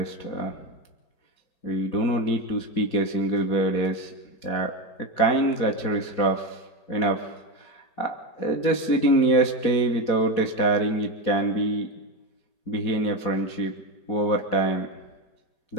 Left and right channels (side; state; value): right; late; 4.2 ms